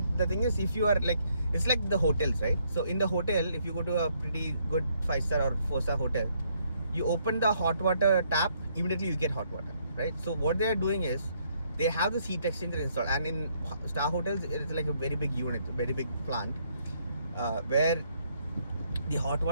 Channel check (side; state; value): both; inverted; correlation -0.71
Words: the thing is, if you are like, it's like the hotels, right? So in the hotel, if you go to a pretty good 5-star or 4-star hotel, you open the hot water tap, immediately you get hot water, right? So what they are doing is, they have this heat exchanger installed. And in star hotels, it's like a very big unit, a very big plant, where the hot